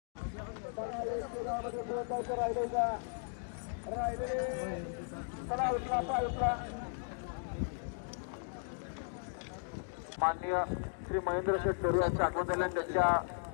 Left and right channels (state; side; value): silent; right; digital silence